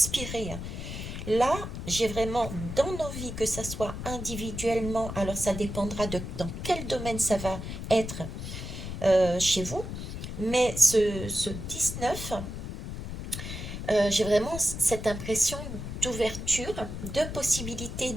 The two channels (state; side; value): noise; left; rumble, 7 dB below the sound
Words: Là, j'ai vraiment dans nos vies, que ça soit individuellement, alors ça dépendra de dans quel domaine ça va être chez vous, mais ce 19, j'ai vraiment cette impression d'ouverture, de possibilité